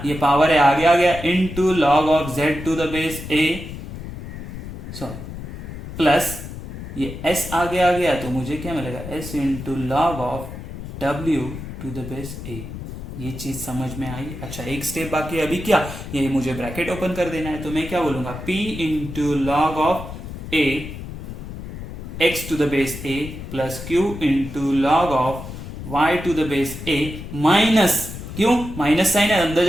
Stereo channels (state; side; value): noise; left; rumble, 10 dB below the sound